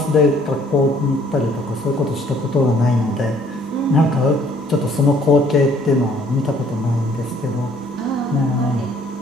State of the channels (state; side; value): normal; both; correlation 0.60